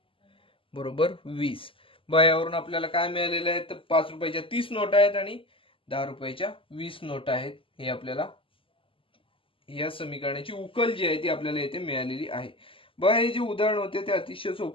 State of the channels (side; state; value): right; late; 0.25 ms